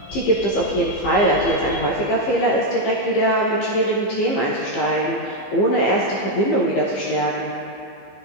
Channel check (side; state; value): right; late; 15 ms